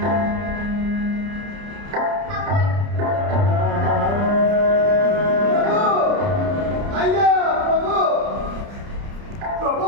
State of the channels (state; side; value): late; left; 30 ms